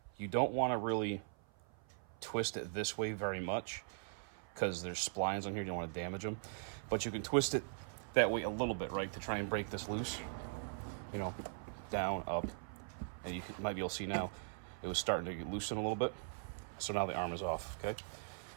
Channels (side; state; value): left; silent; 51 dB below the other